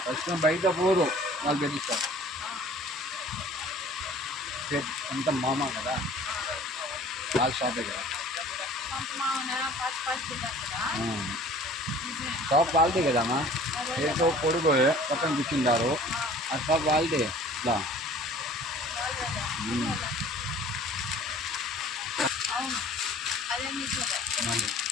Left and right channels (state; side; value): normal; both; correlation 0.49